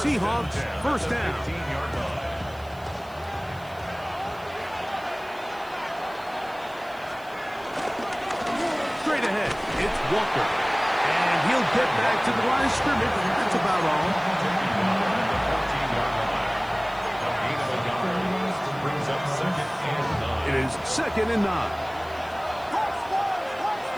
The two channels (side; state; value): right; noise; hiss, 26 dB below the sound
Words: first down. Straight ahead, it's Walker. And he'll get back to the line of scrimmage. That's about all. It is second and 9.